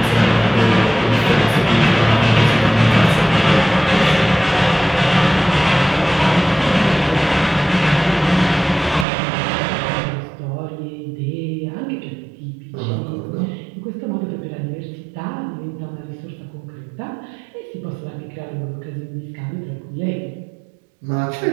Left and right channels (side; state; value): left; drops out; at 9.1 s